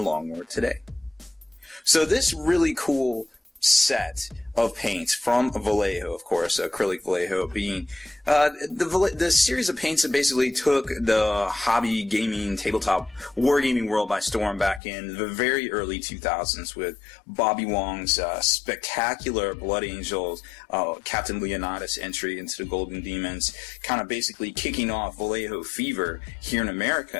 Long War today. So this really cool set of paints from Vallejo, of course, acrylic Vallejo being the series of paints that basically took the hobby gaming, tabletop wargaming world by storm back in the very early 2000s with Bobby Wong's spectacular Blood Angels, Captain Leonidas entry into the Golden Demons, kind of basically kicking off Vallejo fever here in America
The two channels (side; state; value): right; drops out; at 14.8 s